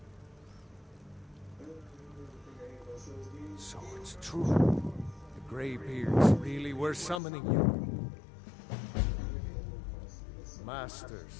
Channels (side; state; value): right; drops out; at 7.2 s